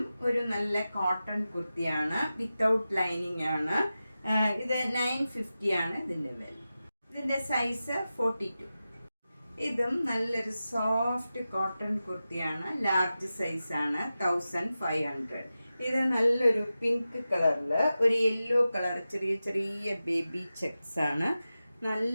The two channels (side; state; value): both; inverted; correlation -0.93